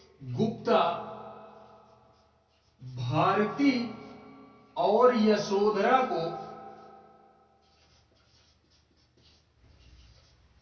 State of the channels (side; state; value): both; identical; correlation 1.00